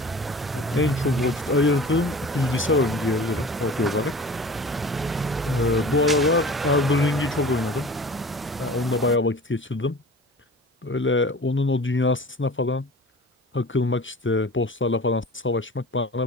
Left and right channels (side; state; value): both; normal; correlation 0.40